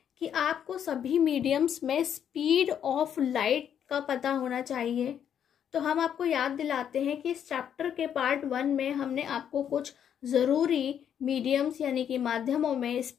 कि आपको सभी मीडियम्स में स्पीड ऑफ लाइट का पता होना चाहिए। तो हम आपको याद दिलाते हैं कि इस चैप्टर के पार्ट 1 में हमने आपको कुछ ज़रूरी मीडियम्स यानी कि माध्यमों में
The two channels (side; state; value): right; quieter; 8.9 dB